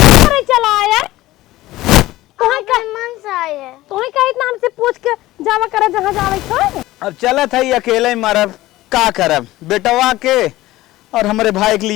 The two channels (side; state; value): right; quieter; 17.0 dB